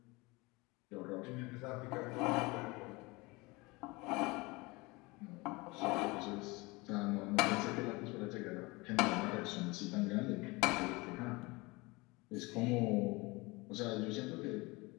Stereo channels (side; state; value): right; quieter; 24.2 dB